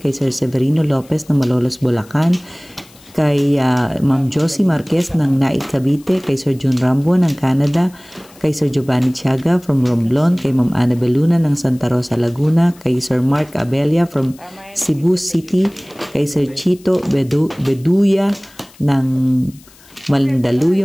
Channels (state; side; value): noise; left; hiss, 26 dB below the sound